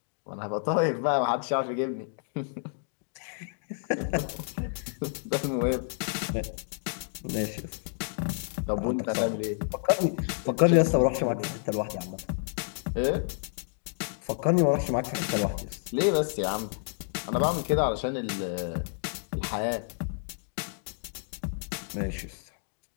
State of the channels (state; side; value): silent; right; digital silence